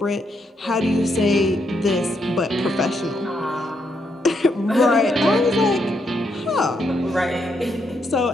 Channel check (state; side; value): normal; both; correlation 0.78